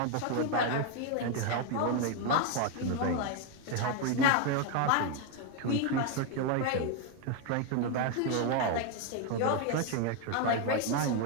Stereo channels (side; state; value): both; different; correlation 0.01